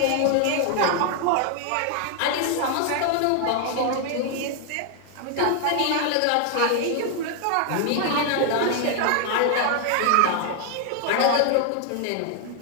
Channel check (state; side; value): different; both; correlation 0.00